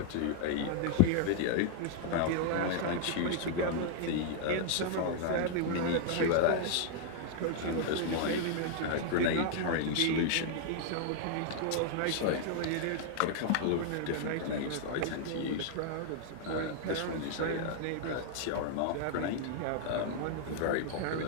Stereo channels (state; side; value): different; both; correlation -0.01